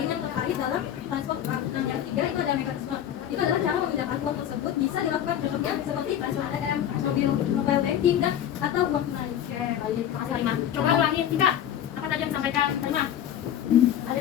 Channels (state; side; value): quieter; right; 10.5 dB